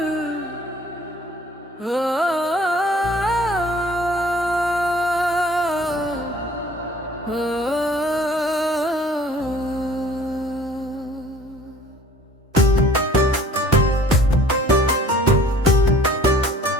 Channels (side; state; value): both; normal; correlation 0.52